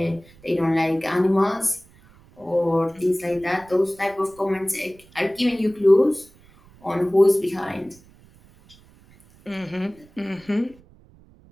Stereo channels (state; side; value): noise; right; rumble, 27 dB below the sound